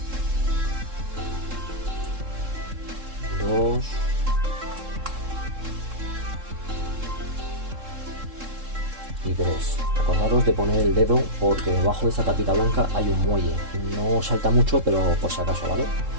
2 y 3. Acordaros de poner el dedo porque debajo de esta tapita blanca hay un muelle. No salta mucho, pero por si acaso, ¿vale?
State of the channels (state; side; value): late; left; 3.7 ms